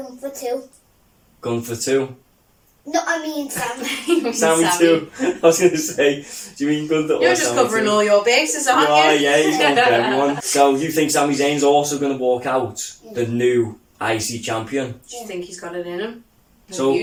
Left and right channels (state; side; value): identical; both; correlation 1.00